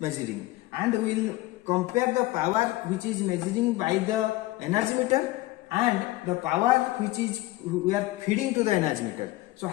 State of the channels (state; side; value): quieter; right; 18.4 dB